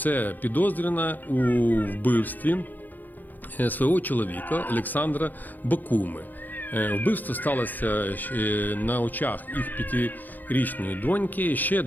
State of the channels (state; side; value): late; right; 0.085 ms